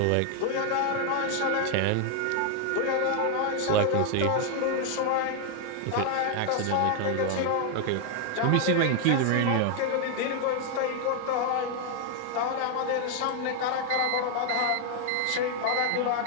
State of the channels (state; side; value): different; both; correlation 0.00